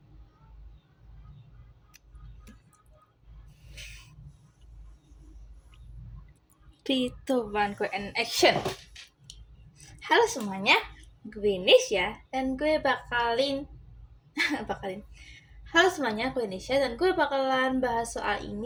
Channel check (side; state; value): both; identical; correlation 1.00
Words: Three, two, one, go and action. Halo semuanya, gue Nisha dan gue bakalin Halo semuanya, gue Nisha dan gue bakalan bahas soal